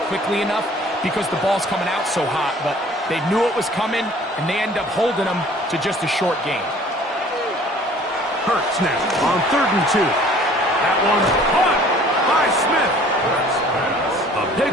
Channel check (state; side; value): normal; both; correlation 0.52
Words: quickly enough because the ball's coming out so hot. But they knew it was coming, and they end up holding them to just a short gain. Hurts now on 3rd and 2. That one's caught by Smith. A